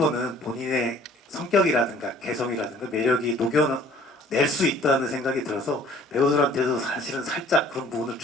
본인의 성격이라든가 개성이라든가 매력이 녹여낼 수 있다는 생각이 들어서 배우들한테도 사실은 살짝 그런 부분을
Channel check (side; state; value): both; normal; correlation 0.53